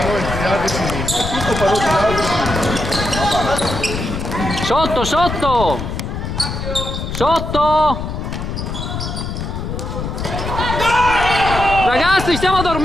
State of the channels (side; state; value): left; noise; rumble, 5 dB below the sound